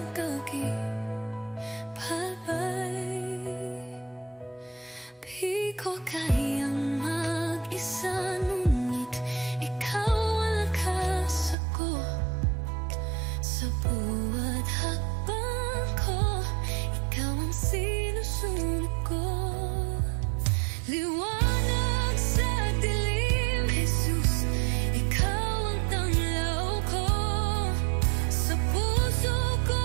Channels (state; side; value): drops out; left; at 11.6 s